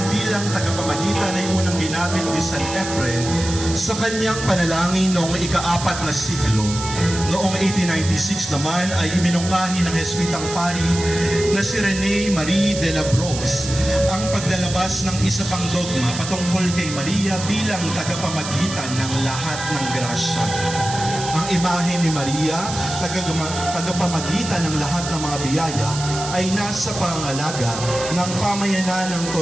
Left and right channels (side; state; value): right; noise; hiss, 8 dB below the sound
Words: bilang tagapamagitan ay unang ginamit ni San Efren sa kanyang panalangin noong ika-4 na siglo. Noong 1896 naman ay iminungkahi ng Jesuitang pari na si Rene Marie de la Brosse ang paglalabas ng isa pang dogma patungkol kay Maria bilang tagapamagitan ng lahat ng grasya. Ang imahe ni Maria, tagapamagitan ng lahat ng mga biyaya, ay nasa pangangalaga ng pamayanan ng